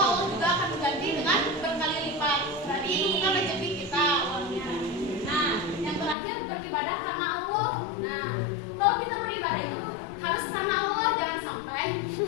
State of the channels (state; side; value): drops out; right; at 6.2 s